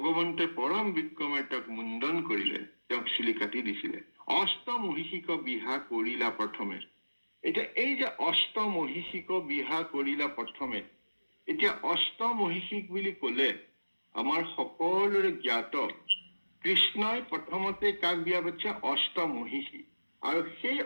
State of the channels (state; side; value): inverted; both; correlation -1.00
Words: পৰম বিক্ৰমে তেওঁক মুণ্ডন কৰিলে, তেওঁক চুলি কাটি দিছিলে। অষ্টমহিষিক বিহা কৰিলা প্ৰথমে। এতিয়া এই যে অষ্টমহিষিক বিহা কৰিলা প্ৰথমে, এতিয়া অষ্টমহিষিক বুলি কলে আমাৰ সকলোৰে জ্ঞাত কৃষ্ণই প্ৰথমতে কাক বিয়া পাতিছে? অষ্টমহিষী। আৰু সেই